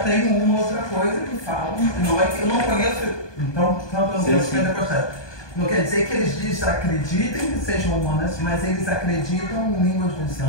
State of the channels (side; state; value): right; late; 1.2 ms